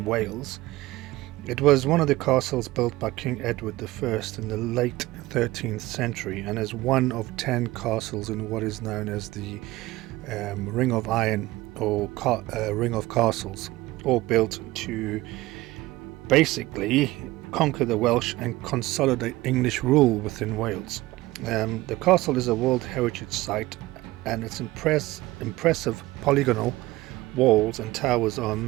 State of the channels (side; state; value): left; quieter; 18.8 dB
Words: Wales. It was one of the castles built by King Edward I in the late 13th century, and is one of 10 castles in what is known as the Ring of Iron, or Ring of Castles, all built to basically conquer the Welsh and consolidate English rule within Wales. The castle is a World Heritage Site, and its impressive polygonal walls and towers are a